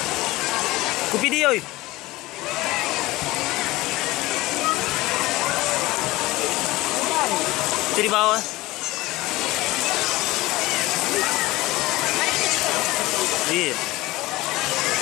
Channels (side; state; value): right; quieter; 19.4 dB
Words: Ku video. Itu di bawah. Iya.